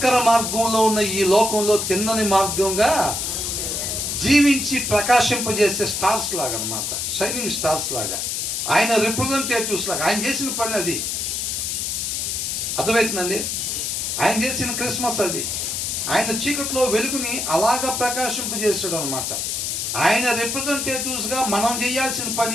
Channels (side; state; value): left; noise; hiss, 1 dB below the sound